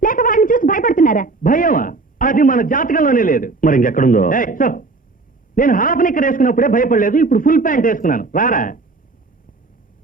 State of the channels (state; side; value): quieter; left; 3.7 dB